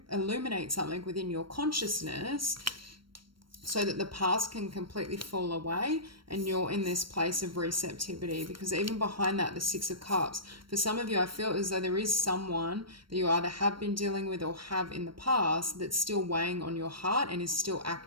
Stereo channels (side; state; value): left; late; 0.73 ms